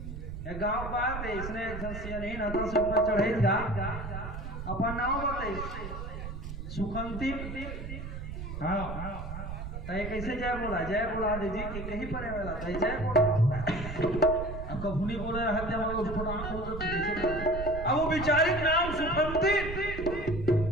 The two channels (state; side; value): noise; right; rumble, 7 dB below the sound